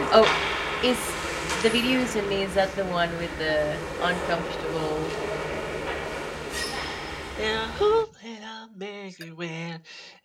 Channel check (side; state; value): both; identical; correlation 1.00